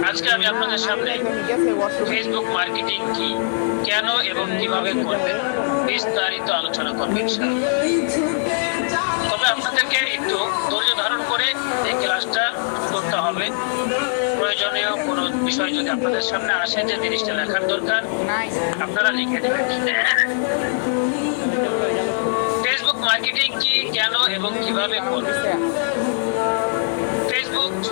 আজকে আমি আপনাদের সামনে ফেসবুক মার্কেটিং কি, কেন এবং কিভাবে করবেন বিস্তারিত আলোচনা করব ইনশাআল্লাহ। তবে আপনাদেরকে একটু ধৈর্য ধারণ করে এই ক্লাসটা করতে হবে। প্রয়োজনীয় কোনো বিষয় যদি আপনাদের সামনে আসে যে জিনিসটা লেখার দরকার, আপনারা লিখে দেবেন। ফেসবুক মার্কেটিং কি, কেন এবং কিভাবে করবেন। ফেসবুক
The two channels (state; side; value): silent; right; digital silence